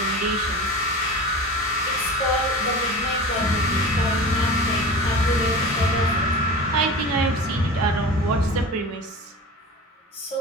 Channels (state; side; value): normal; both; correlation 0.33